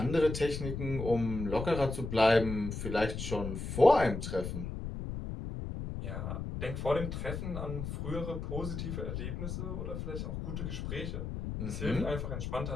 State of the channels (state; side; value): noise; left; rumble, 5 dB below the sound